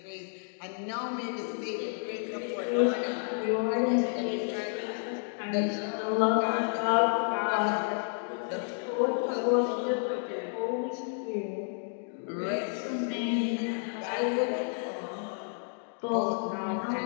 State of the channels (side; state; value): right; silent; 57 dB below the other